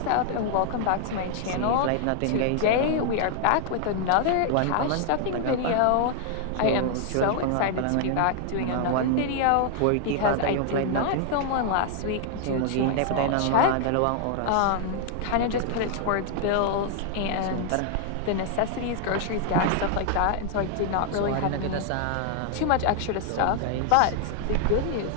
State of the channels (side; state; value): both; different; correlation 0.00